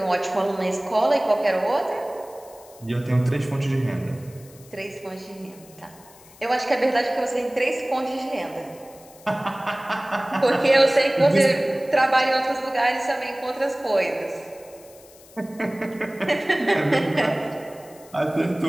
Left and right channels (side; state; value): left; noise; hiss, 24 dB below the sound